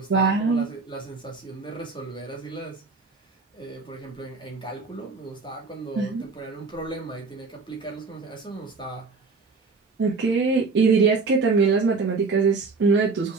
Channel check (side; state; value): left; quieter; 4.3 dB